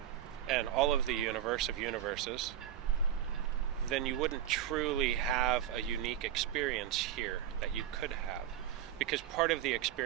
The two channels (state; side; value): quieter; left; 10.7 dB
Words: and all of the universe of universes, then you wouldn't truly have a unique experience here that you could have. Because part of the